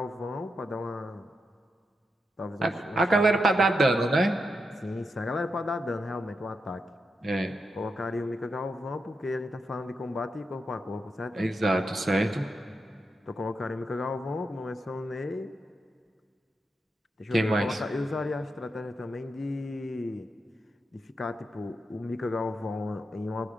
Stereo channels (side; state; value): both; normal; correlation 0.85